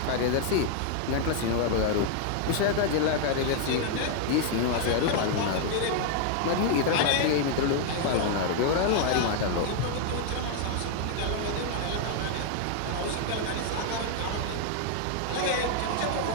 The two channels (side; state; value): both; different; correlation 0.00